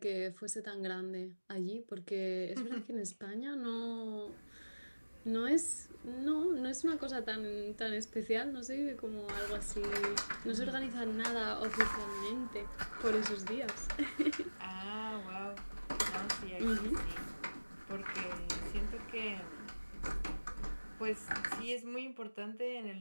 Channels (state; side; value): inverted; both; correlation -1.00